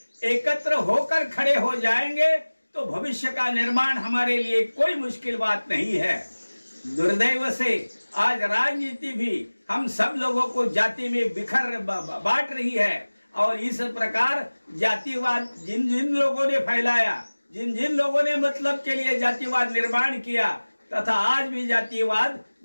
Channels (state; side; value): inverted; both; correlation -1.00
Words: एकत्र होकर खड़े हो जाएंगे तो भविष्य का निर्माण हमारे लिए कोई मुश्किल बात नहीं है। दुर्दैव से आज राजनीति भी हम सब लोगों को जाति में बांट रही है और इस प्रकार जातिवाद जिन जिन लोगों ने फैलाया, जिन जिन लोगों ने मतलब के लिए जातिवाद निर्माण किया तथा आज भी जातिवाद